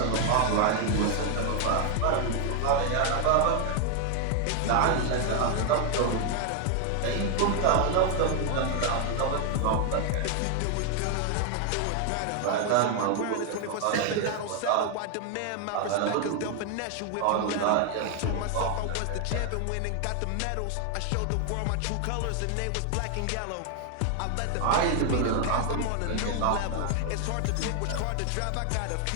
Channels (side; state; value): both; different; correlation 0.00